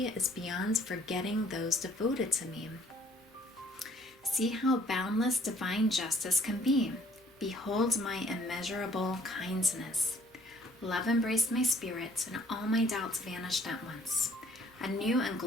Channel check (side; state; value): both; normal; correlation 0.60